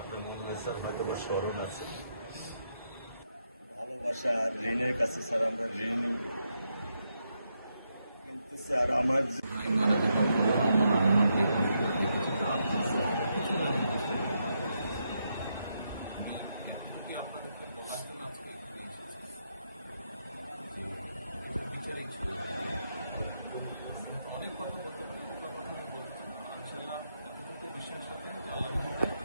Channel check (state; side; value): inverted; both; correlation -0.81